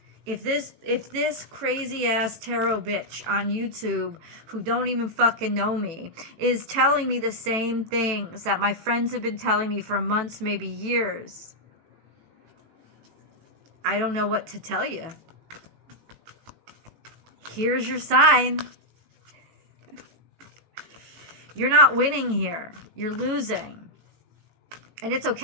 If this crazy ass tarot bitch on YouTube who don't even fucking know me is telling me the same things that my friends have been telling me for months, maybe years, I don't know what to tell you. Here's your sign. You're not winning here. You're losing. And it's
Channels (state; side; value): late; left; 18 ms